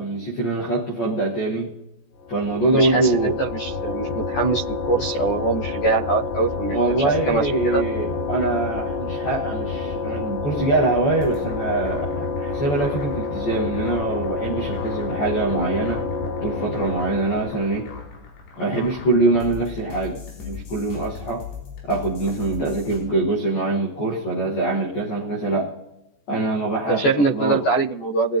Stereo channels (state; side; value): late; right; 14 ms